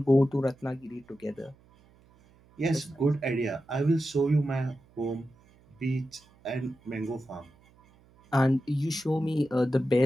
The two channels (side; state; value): right; noise; hum, 29 dB below the sound